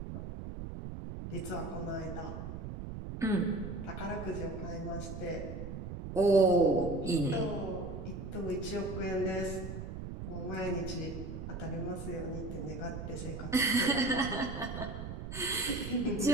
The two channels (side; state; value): right; noise; rumble, 7 dB below the sound